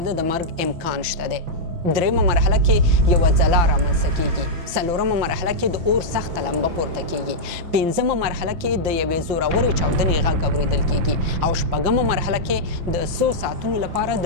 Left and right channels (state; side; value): late; left; 5.9 ms